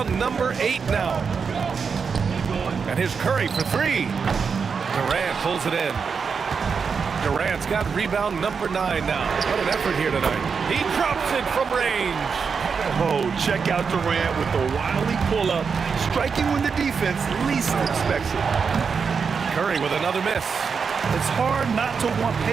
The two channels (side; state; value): left; quieter; 5.8 dB